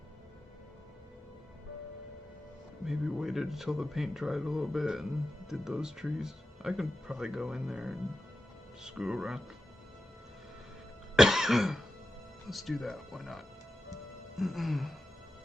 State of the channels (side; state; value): both; normal; correlation 0.92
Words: Maybe waited until the paint dried a little bit and did those trees. I can probably go in there and screw around. Let's do that. Why not?